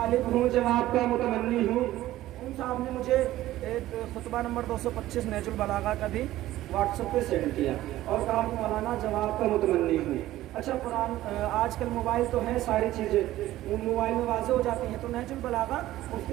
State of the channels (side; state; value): left; quieter; 15.1 dB